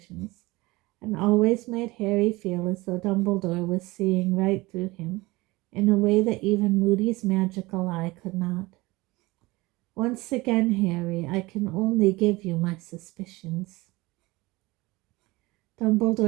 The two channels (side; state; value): left; quieter; 21.5 dB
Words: and always made Harry feel as though Dumbledore was seeing right through him in a way that even Moody's magical eye could not. "Once again, Harry, I can only give you my suspicions."